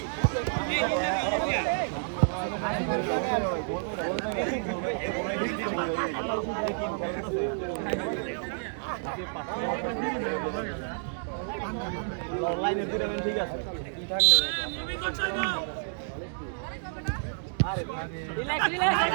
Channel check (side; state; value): left; silent; 58 dB below the other